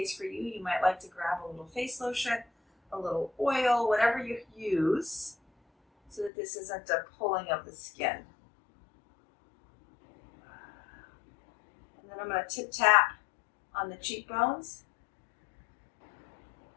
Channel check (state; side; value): drops out; right; at 6.3 s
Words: for you, you might like to grab a little face lotion, a little oil, whatever you use, so that this isn't a pulling of the skin. And then I'm going to tip tap on the cheekbones.